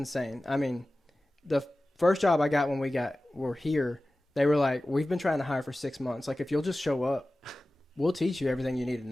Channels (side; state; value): both; normal; correlation 0.96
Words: I mean, the first job I got when we're here, they were like, we've been trying to hire for 6 months. Like, if you'll just show up, we'll teach you everything you need to